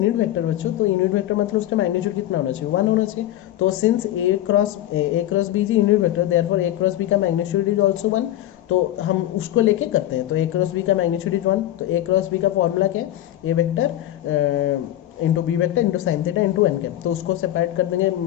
vector बच्चों, तो यूनिट वेक्टर मतलब उसका मैग्नीट्यूड कितना होना चाहिए, 1 होना चाहिए। तो since A cross B is unit vector, therefore A cross B का मैग्नीट्यूड इज आल्सो 1, तो हम उसको लेके करते हैं। तो ए क्रॉस बी का मैग्नीट्यूड इज 1, तो ए क्रॉस बी का फॉर्मूला क्या है, A vector into B vector into sine theta into N cap, तो उसको सेपरेट कर देंगे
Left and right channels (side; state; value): right; quieter; 13.5 dB